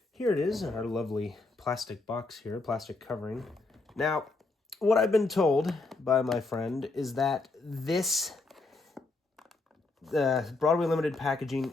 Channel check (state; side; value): quieter; right; 3.5 dB